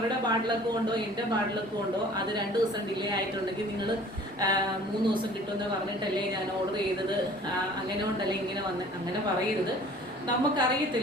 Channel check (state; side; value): normal; both; correlation 0.49